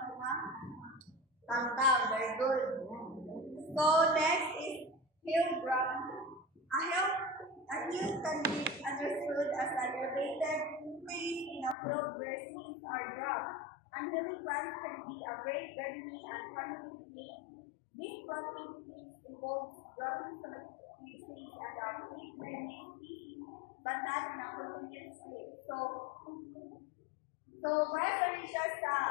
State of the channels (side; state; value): right; drops out; at 11.8 s